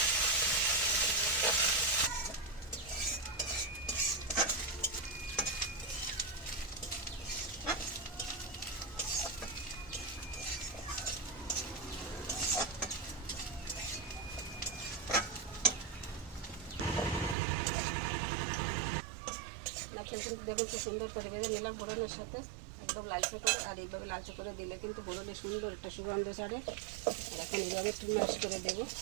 নারকেল কিন্তু দেখুন খুব সুন্দর করে ভেজে নিলাম ফোড়নের সাথে একদম লালচে করে। আর এইভাবে লালচে করে দিলে কিন্তু ফোড়নে সুন্দর একটা সুগন্ধ ছাড়ে। আর এখন এইভাবে একটু ম্যাশ করে দেবো,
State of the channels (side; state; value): left; drops out; at 17.4 s